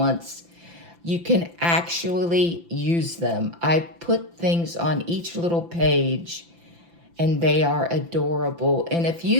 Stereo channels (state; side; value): late; left; 5.9 ms